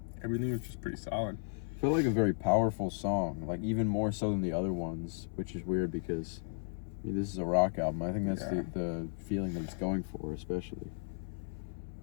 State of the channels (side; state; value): right; silent; 55 dB below the other